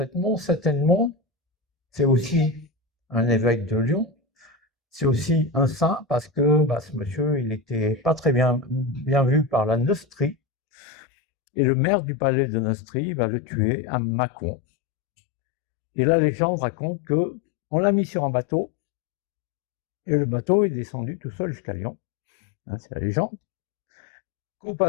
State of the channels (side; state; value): right; drops out; at 10.4 s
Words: Saint-Edmond, c'est aussi un évêque de Lyon. C'est aussi un saint parce que ce monsieur, il n'était pas très bien vu par la Neustrie. Et le maire du palais de Neustrie va le tuer à Mâcon. Et la légende raconte qu'on l'a mis sur un bateau et le bateau est descendu tout seul jusqu'à Lyon. Hein, c'est la légende. Qu'au